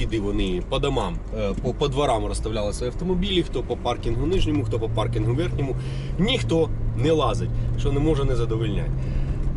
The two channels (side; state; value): both; identical; correlation 1.00